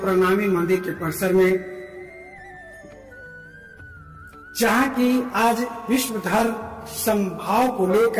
प्रणामी मंदिर के परिसर में, जहां की आज विश्व धर्म समभाव को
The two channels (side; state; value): both; identical; correlation 1.00